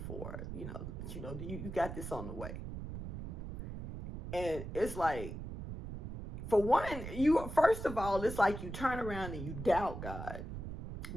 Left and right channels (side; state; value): right; noise; rumble, 7 dB below the sound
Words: or you got this on the way. And it's like, for one, first of all, it's like you turn around and you doubt God